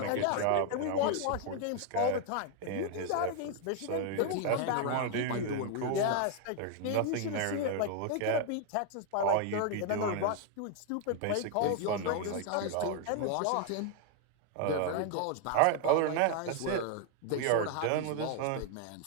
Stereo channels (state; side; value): different; both; correlation 0.01